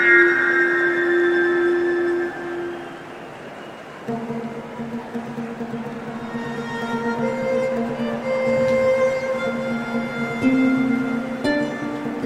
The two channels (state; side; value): identical; both; correlation 1.00